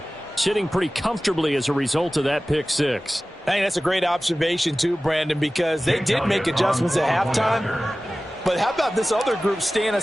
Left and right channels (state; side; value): normal; both; correlation 0.97